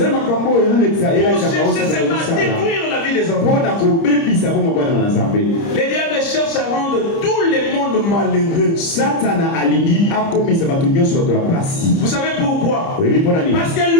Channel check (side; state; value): right; late; 30 ms